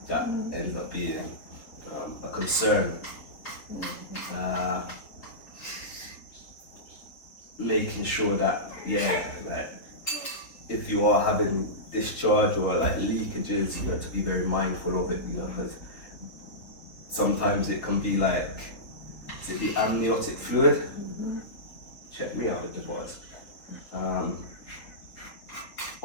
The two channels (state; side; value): late; right; 3.7 ms